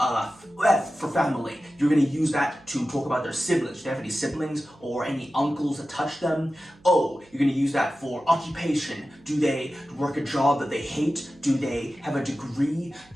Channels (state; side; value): noise; right; hum, 28 dB below the sound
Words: for family. You're gonna use that to talk about their siblings. Do they have any siblings or any uncles that touch them? O, you're gonna use that for occupation. Do they work a job that they hate? Do they have a degree?